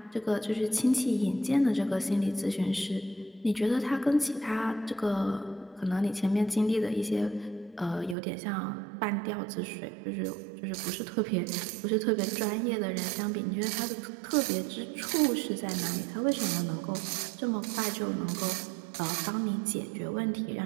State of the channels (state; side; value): drops out; left; at 8.2 s